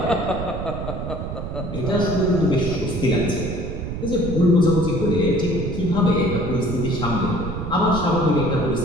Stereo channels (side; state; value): right; noise; rumble, 6 dB below the sound